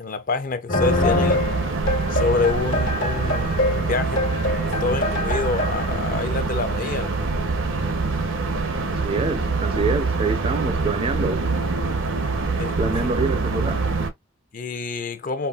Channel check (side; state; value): both; normal; correlation 0.36